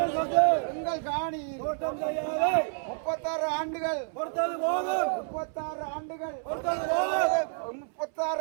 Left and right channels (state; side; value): silent; left; 58 dB below the other